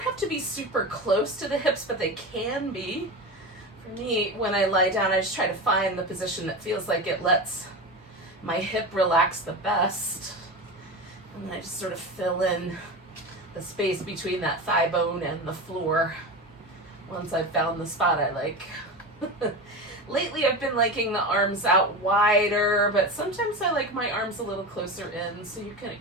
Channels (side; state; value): both; normal; correlation 0.24